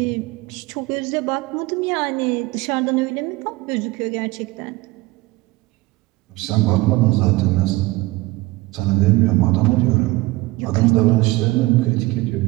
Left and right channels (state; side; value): quieter; left; 20.5 dB